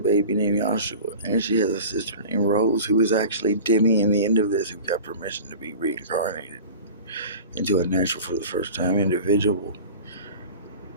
named Joshua. And she has a sister named Rose, who is actually Demi in the end of this, who got permission to be reincarnated into a natural for the first time individual,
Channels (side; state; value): both; inverted; correlation -0.37